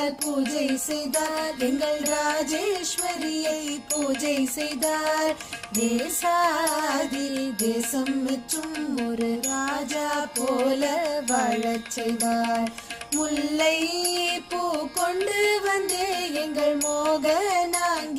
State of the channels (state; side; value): identical; both; correlation 1.00